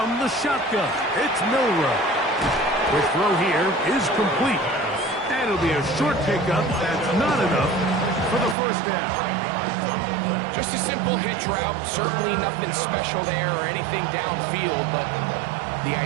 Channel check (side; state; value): left; drops out; at 8.6 s